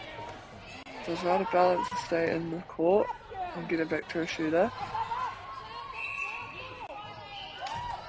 So it's right a balance to stay in the court and get it back to a shooter.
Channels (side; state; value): both; identical; correlation 1.00